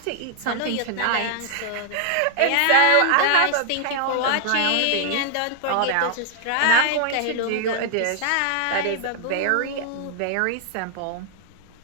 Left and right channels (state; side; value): different; both; correlation -0.01